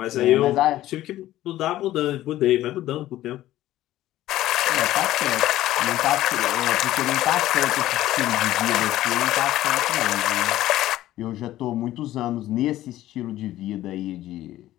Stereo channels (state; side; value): quieter; right; 14.6 dB